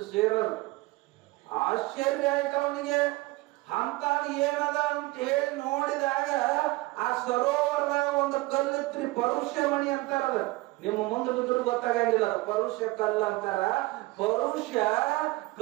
ಶೇರ್. ಆಶ್ಚರ್ಯ ಆಯ್ತು ಅವನಿಗೆ. ಅಂತ ಏನದ ಅಂತ ಹೇಳಿ ನೋಡಿದಾಗ ಆ ಸರೋವರದಾಗ ಒಂದು ಕಲ್ಲಿತ್ರಿ, ಪರುಷ ಮಣಿ ಅಂತಾರದ. ನಿಮ್ಮ ಮುಂದೆ ಬಿದ್ರು ಗೊತ್ತಾಗಂಗಿಲ್ಲ, ಪರುಷ ಕಲ್ಲು ಅಂತಾರ. ಪರುಷ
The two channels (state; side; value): quieter; left; 21.0 dB